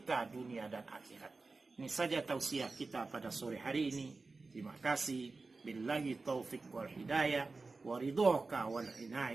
dunia dan akhirat. Ini saja tausiah kita pada sore hari ini. Terima kasih. Billahi taufiq wal hidayah wa ridhaka wal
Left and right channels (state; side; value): quieter; left; 3.8 dB